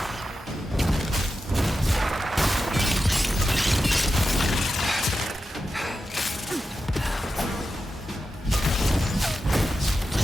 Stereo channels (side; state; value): both; normal; correlation 0.91